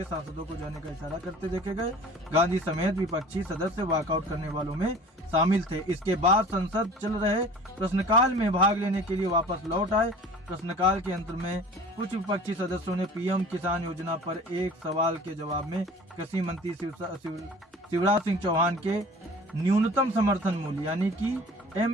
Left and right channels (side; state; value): both; normal; correlation 0.44